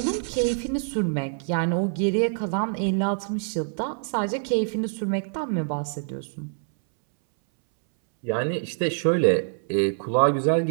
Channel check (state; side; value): silent; left; 61 dB below the other